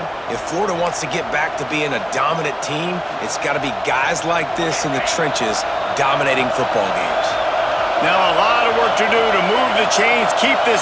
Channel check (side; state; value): both; identical; correlation 1.00